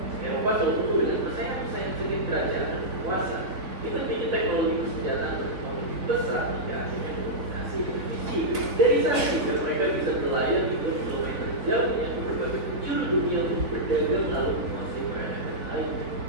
Eropa selalu penuh dengan persaingan-persaingan sengit kerajaan dan penguasa. Kita bikin teknologi persenjataan berkembang besar hingga akhirnya dominasi Indonesia. Dari sana juga mereka bisa berlayar di kilometer jauh yang ke berbagai penjuru dunia untuk berdagang lalu menguasai peradaban lainnya.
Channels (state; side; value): late; left; 3.8 ms